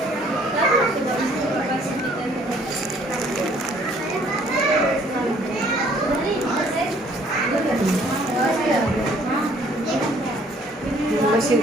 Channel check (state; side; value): normal; both; correlation 0.60